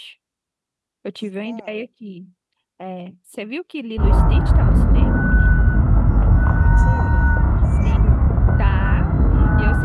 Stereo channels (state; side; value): identical; both; correlation 1.00